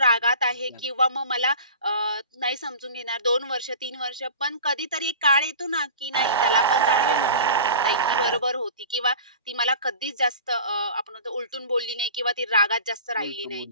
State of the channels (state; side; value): inverted; both; correlation -0.38